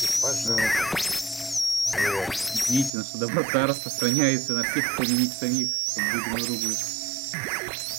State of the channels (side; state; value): left; drops out; at 2.9 s